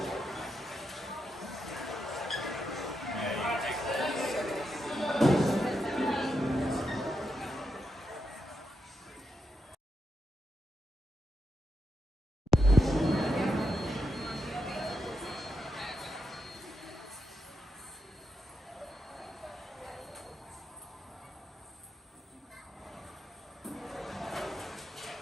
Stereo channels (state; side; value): normal; both; correlation 0.84